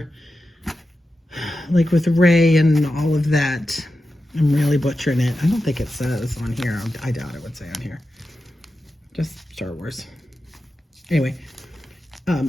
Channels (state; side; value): normal; both; correlation 0.91